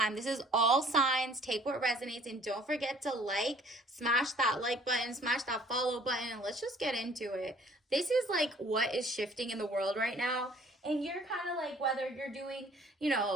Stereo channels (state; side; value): normal; both; correlation 0.56